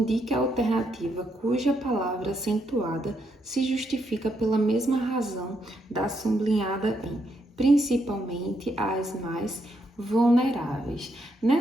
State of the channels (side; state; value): both; normal; correlation 0.77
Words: a alternativa cuja palavra acentuada se justifica pela mesma razão da sublinhada em, principalmente as mais vulneráveis.